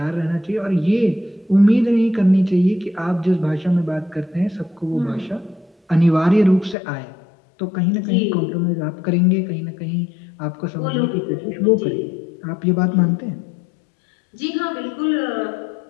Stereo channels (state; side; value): drops out; right; at 6.8 s